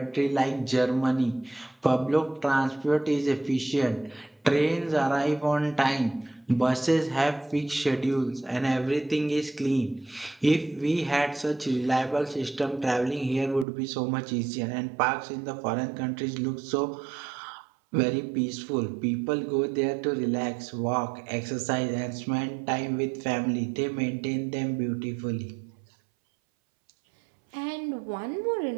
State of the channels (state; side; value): drops out; left; at 13.7 s